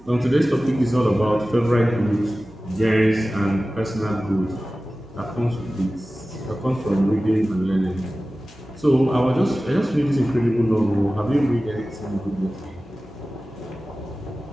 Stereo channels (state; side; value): noise; right; hum, 25 dB below the sound